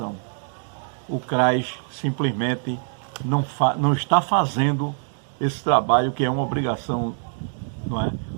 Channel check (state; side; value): silent; left; 63 dB below the other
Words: O CRAS simplesmente não está fazendo esse trabalho, que é uma obrigação, não é?